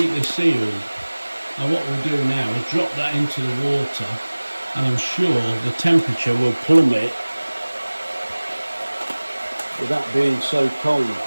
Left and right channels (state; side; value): inverted; both; correlation -1.00